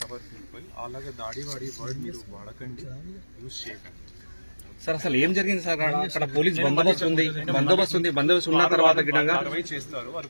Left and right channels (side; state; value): both; inverted; correlation -1.00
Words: our people. అలాగా దాడి వర్డ్ మీరు వాడకండి, యూజ్ చేయకండి. సార్ అసలు ఏం జరిగింది సార్? అక్కడ పోలీస్ బందోబస్తు ఉంది. బందోబస్తు ఉన్న తర్వాత కార్రవాయి చేస్తారు,